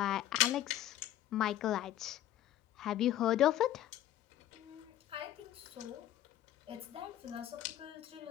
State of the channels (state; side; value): quieter; right; 12.9 dB